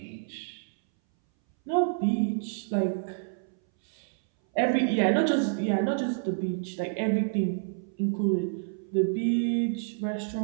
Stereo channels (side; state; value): left; silent; 59 dB below the other